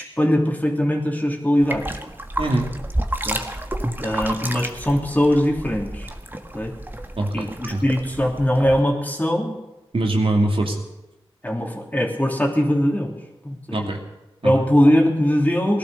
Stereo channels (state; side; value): normal; both; correlation 0.93